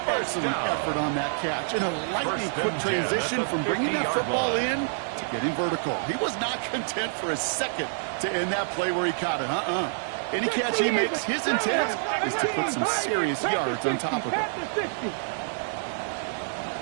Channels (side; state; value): left; silent; digital silence